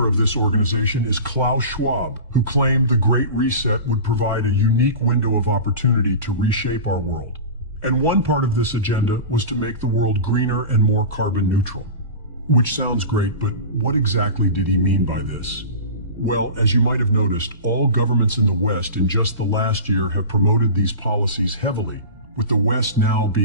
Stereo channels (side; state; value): both; inverted; correlation -0.32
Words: of this organization is Klaus Schwab, who claimed the Great Reset would provide a unique window of opportunity to reshape our world. And one part of this agenda was to make the world greener and more carbon neutral. Which sounds great, but what exactly did he mean by this? Well, as you might have noticed, all governments in the West in just the last year have promoted these policies heavily, with the West now